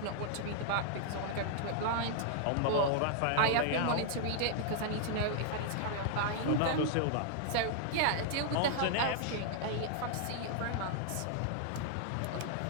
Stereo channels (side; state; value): both; different; correlation -0.01